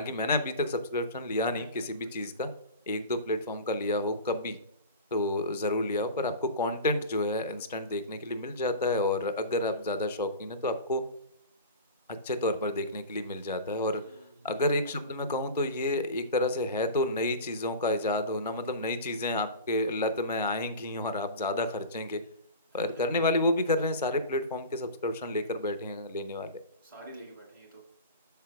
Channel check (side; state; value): both; inverted; correlation -0.32